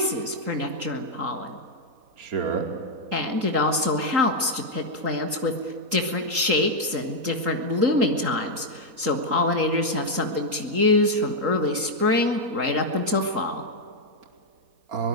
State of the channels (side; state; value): left; late; 3.8 ms